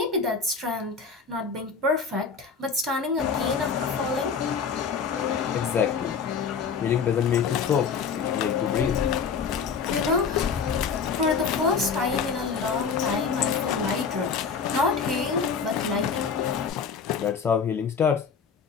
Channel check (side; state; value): right; quieter; 5.9 dB